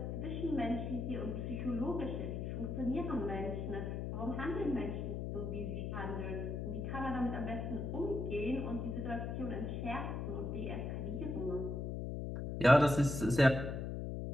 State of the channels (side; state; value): left; noise; hum, 3 dB below the sound